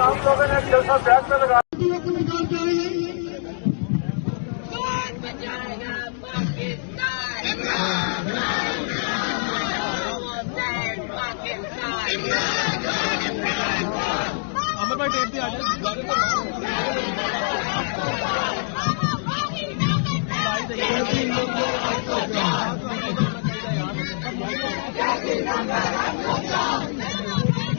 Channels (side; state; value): right; silent; digital silence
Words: लोगों ने जैसा बैग में लगा अमर भाई टेप दिया